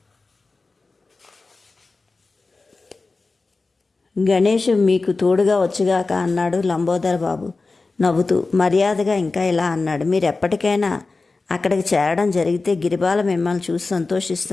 గణేష్ మీకు తోడుగా వచ్చుగాక అన్నాడు లంబోదర్ బాబు నవ్వుతూ. మర్యాదగా ఇంకా ఇలా అన్నాడు. మీరు ఎప్పటికైనా అక్కడికి చేరడం జరిగితే గిరిబాల మిమ్మల్ని చూసి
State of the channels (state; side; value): quieter; right; 3.7 dB